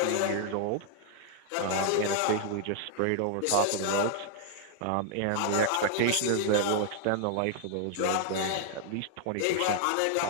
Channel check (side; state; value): both; different; correlation -0.01